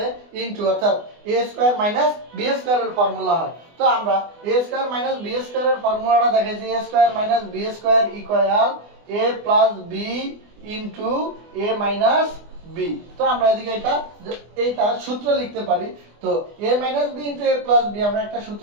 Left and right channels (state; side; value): late; left; 24 ms